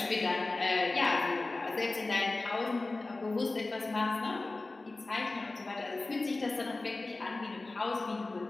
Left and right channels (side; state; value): right; quieter; 3.2 dB